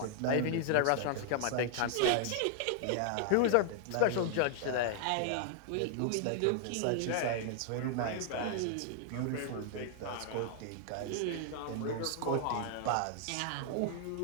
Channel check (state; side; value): different; both; correlation -0.01